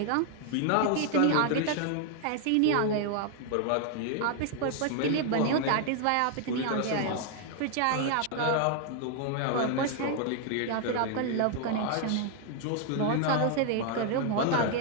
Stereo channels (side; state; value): both; different; correlation 0.00